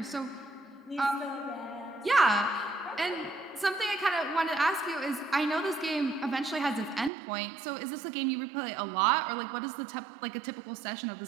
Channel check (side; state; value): left; drops out; at 7.1 s